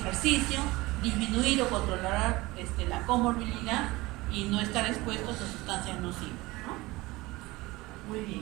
disminuir o controlar la comorbilidad y no estar expuestos a sustancias nocivas, ¿no? Muy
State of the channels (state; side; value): quieter; left; 20.8 dB